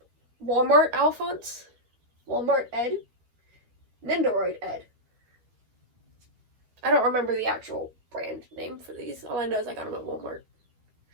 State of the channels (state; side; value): late; left; 12 ms